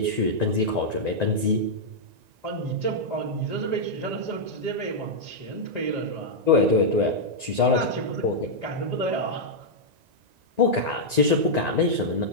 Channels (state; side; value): late; left; 1.9 ms